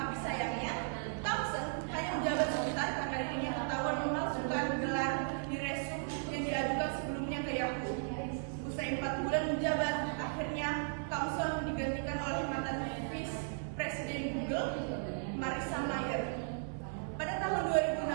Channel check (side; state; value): left; silent; 54 dB below the other